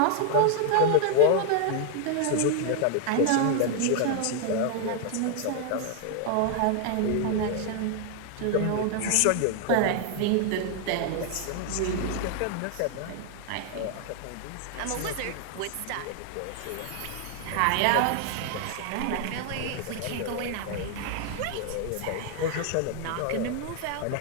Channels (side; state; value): both; different; correlation 0.00